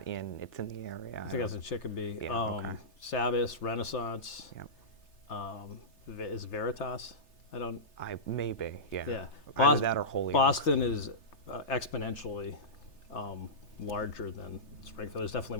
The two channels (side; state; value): right; late; 3.3 ms